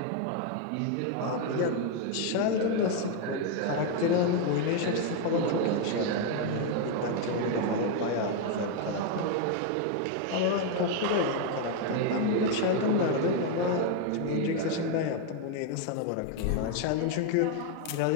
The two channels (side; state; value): both; different; correlation 0.01